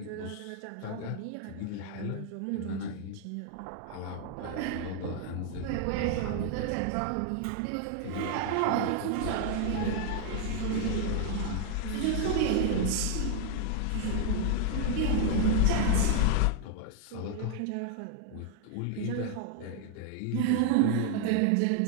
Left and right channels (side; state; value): both; different; correlation 0.00